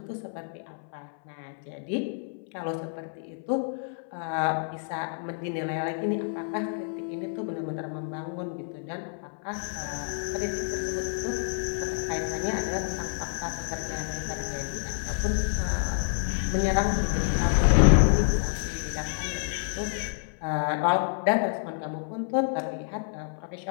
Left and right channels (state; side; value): silent; right; 59 dB below the other